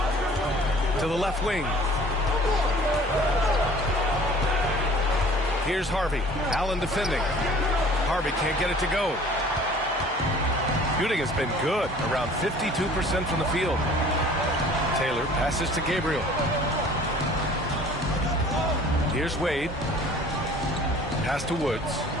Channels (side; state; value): both; normal; correlation 0.49